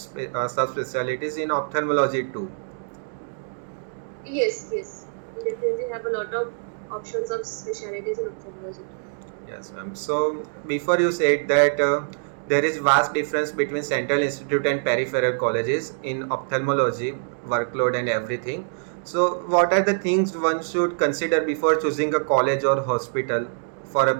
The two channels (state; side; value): silent; left; digital silence